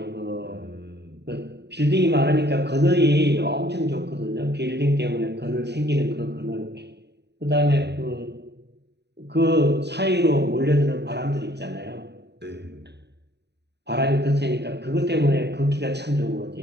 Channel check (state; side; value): late; left; 0.49 ms